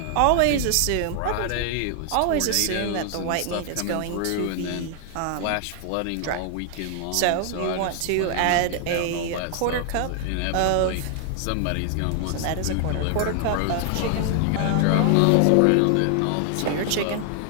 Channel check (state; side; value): different; both; correlation 0.00